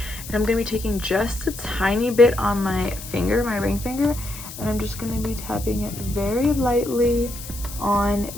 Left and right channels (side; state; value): left; noise; hiss, 13 dB below the sound